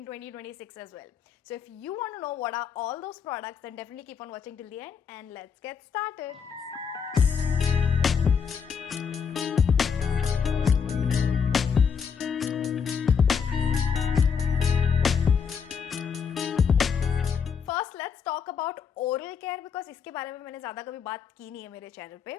2026 as well. So if you want to know what are all those products, then definitely keep on watching till the end and let's get started. First let's talk about oral care because इसके बारे में मैंने ज़्यादा कभी बात की नहीं है मेरे चैनल पे.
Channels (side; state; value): right; quieter; 6.5 dB